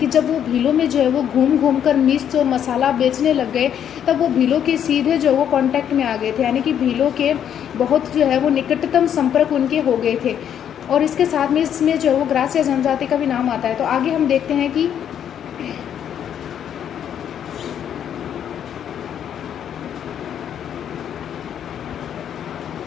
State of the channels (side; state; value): right; quieter; 9.3 dB